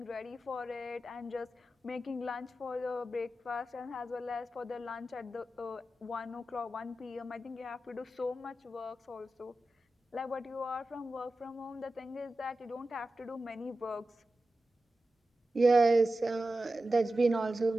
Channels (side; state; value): both; normal; correlation 0.93